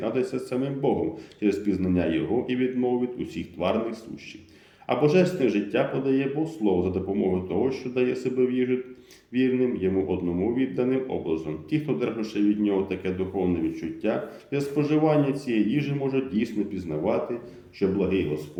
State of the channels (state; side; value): identical; both; correlation 1.00